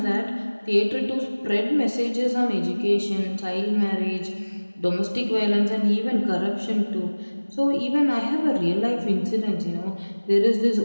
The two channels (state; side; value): inverted; both; correlation -1.00